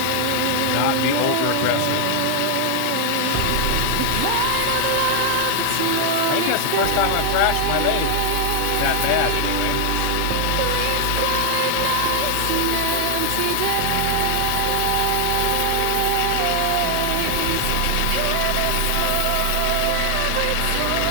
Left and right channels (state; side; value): different; both; correlation 0.00